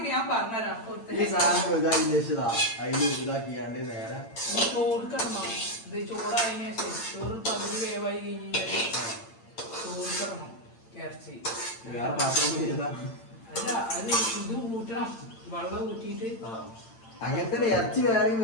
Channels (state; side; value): late; right; 8.8 ms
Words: ഞാൻ പറഞ്ഞുതരാം. ഈ സാധനം ഇതാക്കി വെച്ചതാ, അതില് ഇതാക്കിയാണ്ട് നേരെ ചോറ് കിടണം. ഇത് ചോറായതിനു ശേഷം ചോറ് പകുതി വേവായി കഴിഞ്ഞാൽ ചോറ് കിടണം ഇറച്ചി. വേറെ പാത്രം ചെയ്താ അല്ല, അത് ഇത് ഊറ്റണം. വെള്ളം ഊറ്റിയിട്ട് അങ്ങനത്തെ ഇറച്ചി വേറെ